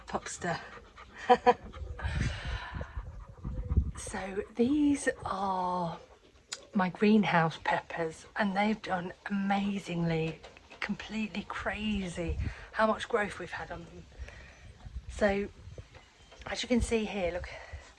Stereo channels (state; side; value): identical; both; correlation 1.00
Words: popster. So these are my greenhouse peppers and they've done amazingly, completely crazy how much growth we've had on them. So as you can see here, look,